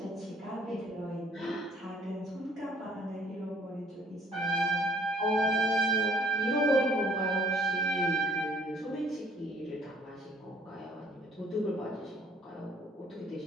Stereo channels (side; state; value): both; normal; correlation 0.59